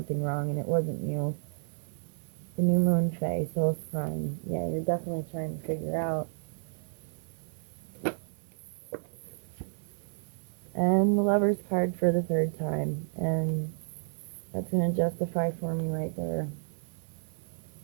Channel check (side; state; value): left; silent; 57 dB below the other